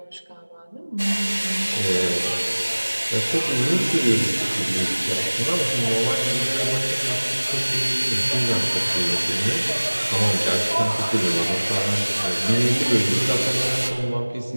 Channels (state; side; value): inverted; both; correlation -1.00